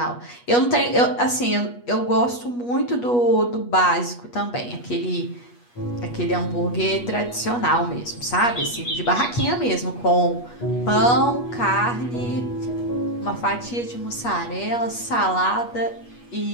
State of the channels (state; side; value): late; right; 8.3 ms